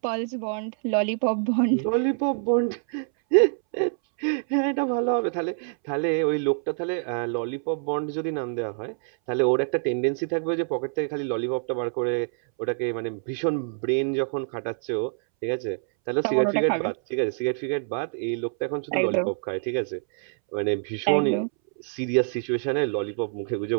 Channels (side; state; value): left; silent; 61 dB below the other